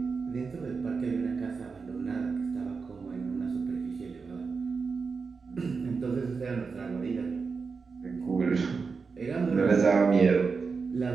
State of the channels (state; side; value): quieter; left; 4.9 dB